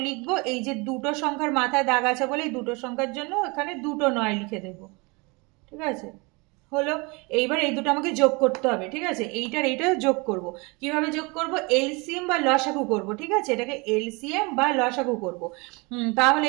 লিখবো, এই যে দুটো সংখ্যার মাথায় দাগ আছে বলে এই দুটো সংখ্যার জন্য এখানে দুটো 9 লিখে দেবো। ঠিক আছে, হলো। এইবার এই দুটো আমাকে যোগ করতে হবে। ঠিক আছে, এইটার এইটা যোগ করব। কিভাবে যোগ করব? এলসিএম বা লসাগু করব। ঠিক আছে, এটাকে এলসিএম বা লসাগু করব। তাহলে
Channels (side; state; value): left; quieter; 28.0 dB